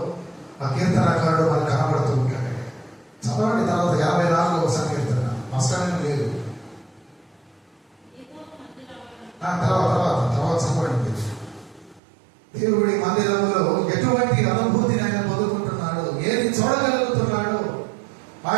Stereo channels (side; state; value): left; drops out; at 12.0 s